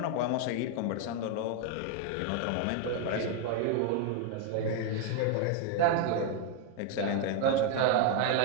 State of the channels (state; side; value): different; both; correlation 0.01